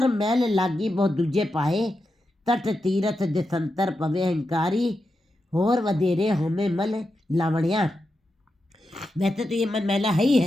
मैल लागी बहुत दूजे पाए, तट तीरथ दिसंतर पवे हंकारी, होर वधेरे होमे मल लावणिया। वैसे तो ये मन मैला है ही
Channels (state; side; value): normal; both; correlation 0.88